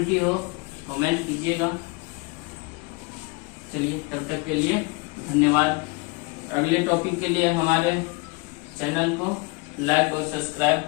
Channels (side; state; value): right; quieter; 27.6 dB